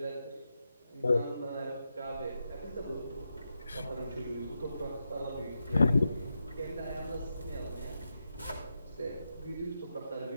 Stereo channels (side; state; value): both; inverted; correlation -0.87